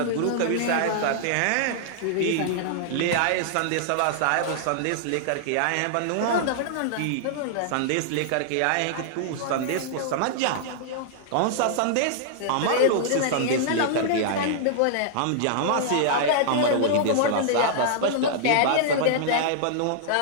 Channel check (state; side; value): different; both; correlation -0.01